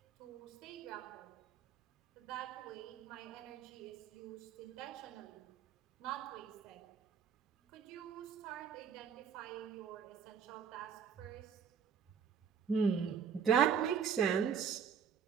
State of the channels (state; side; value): quieter; left; 7.3 dB